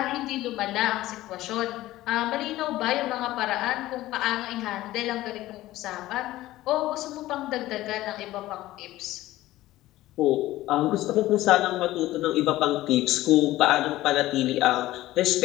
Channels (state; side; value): quieter; right; 16.1 dB